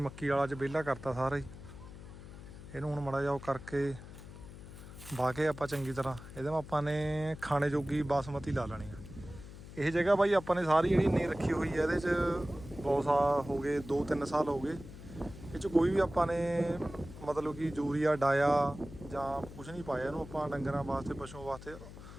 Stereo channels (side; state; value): left; noise; hum, 15 dB below the sound